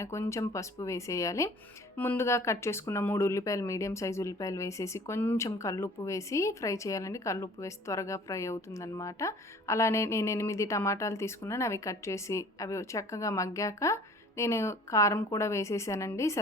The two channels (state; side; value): normal; both; correlation 0.49